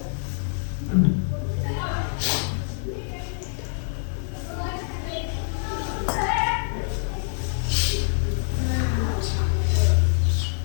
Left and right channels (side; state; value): right; silent; digital silence